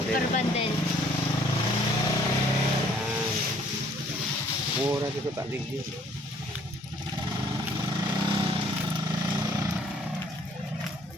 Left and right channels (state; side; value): normal; both; correlation 0.60